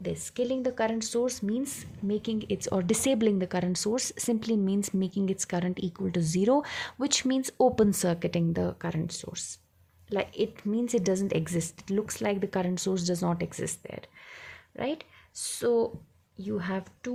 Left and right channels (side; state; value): both; identical; correlation 1.00